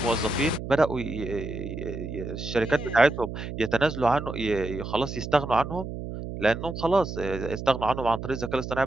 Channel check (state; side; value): noise; right; hum, 7 dB below the sound